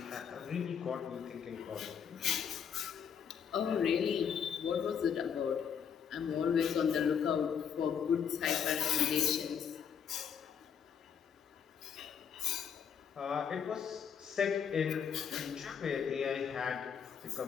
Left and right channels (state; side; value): quieter; right; 7.6 dB